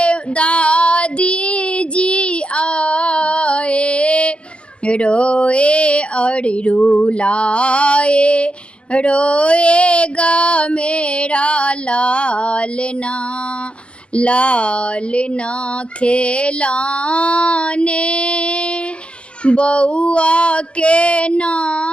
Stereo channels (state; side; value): late; right; 0.058 ms